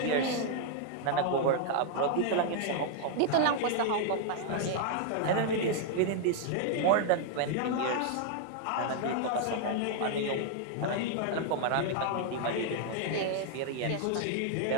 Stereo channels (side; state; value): both; different; correlation 0.00